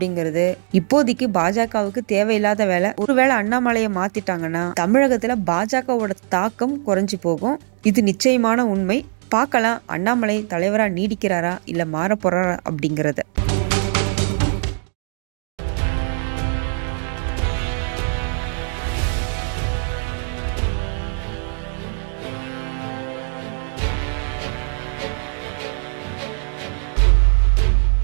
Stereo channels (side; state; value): left; silent; digital silence